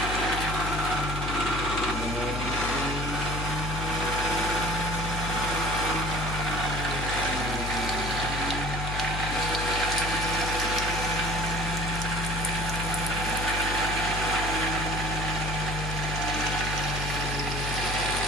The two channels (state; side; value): noise; left; hum, 3 dB below the sound